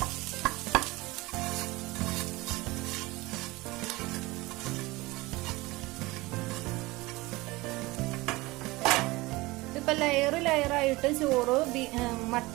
അപ്പൊ ലെയർ ആയിട്ട് ചോറ്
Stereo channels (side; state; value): left; quieter; 21.5 dB